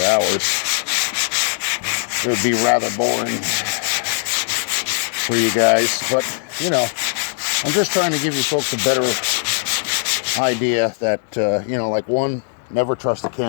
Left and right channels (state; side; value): silent; right; digital silence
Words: It would be rather boring for you guys. But, you know, I'm just trying to give you folks a better idea that, you know, like one, never trust a